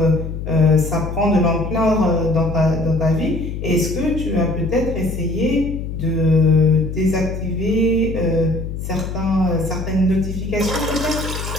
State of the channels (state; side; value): noise; left; hum, 6 dB below the sound